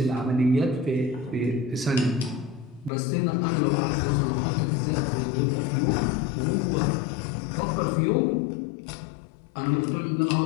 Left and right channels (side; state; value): right; drops out; at 2.9 s